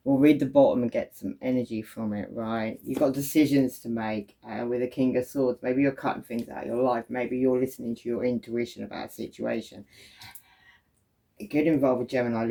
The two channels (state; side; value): identical; both; correlation 1.00